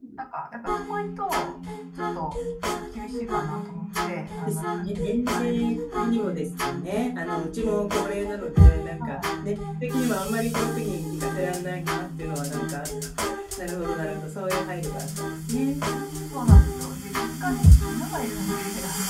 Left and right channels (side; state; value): both; identical; correlation 1.00